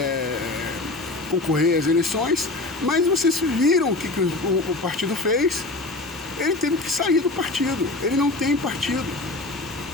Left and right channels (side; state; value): right; quieter; 3.0 dB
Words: concorrer às eleições, mas vocês viram o que o partido fez. Ele teve que sair do partido. Ele não tem partido.